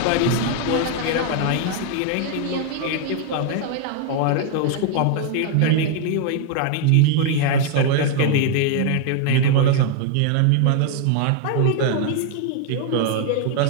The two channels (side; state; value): both; different; correlation 0.00